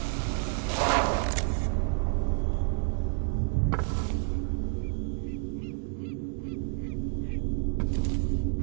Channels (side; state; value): left; silent; 58 dB below the other